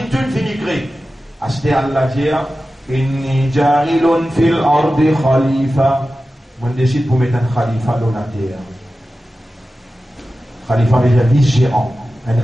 tout finit créer. À ce terre, Allah dit, inni jarilun fil ardi khalifa. On décide pour mettre un khalifa dans la terre. Khalifa veut dire vice-gérant, un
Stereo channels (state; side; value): normal; both; correlation 0.94